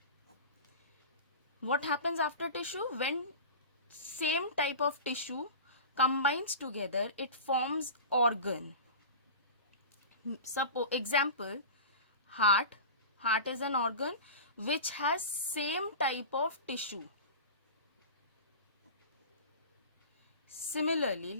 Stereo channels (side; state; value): both; inverted; correlation -0.33